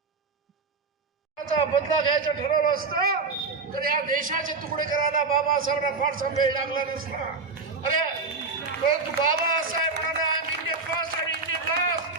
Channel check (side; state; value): left; quieter; 4.2 dB